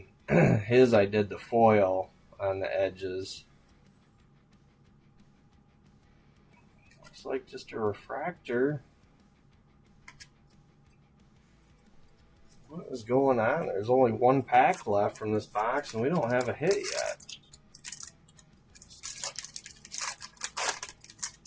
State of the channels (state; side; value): identical; both; correlation 1.00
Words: his I did the foil on the edges. Looks like just a refractor. What is going on? There's only one pack left from this box, and we don't have a hit yet.